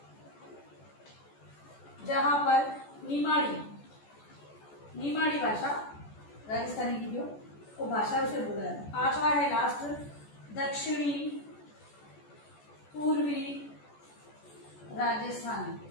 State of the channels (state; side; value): late; right; 14 ms